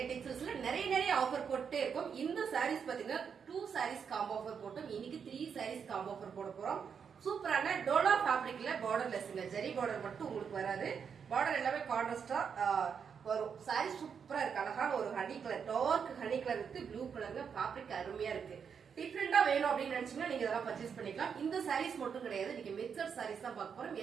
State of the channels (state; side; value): quieter; left; 6.8 dB